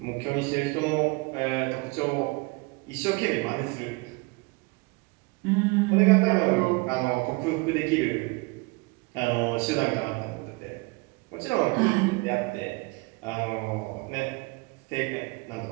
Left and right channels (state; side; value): quieter; left; 26.8 dB